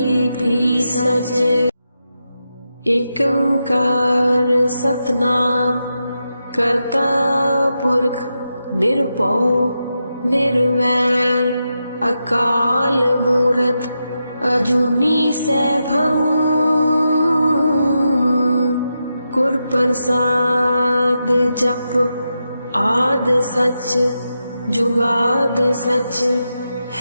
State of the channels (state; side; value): inverted; both; correlation -0.87